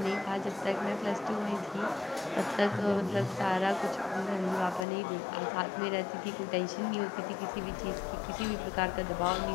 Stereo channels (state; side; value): drops out; right; at 4.9 s